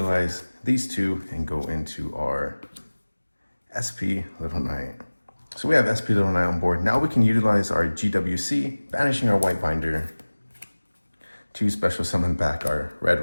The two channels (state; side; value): inverted; both; correlation -1.00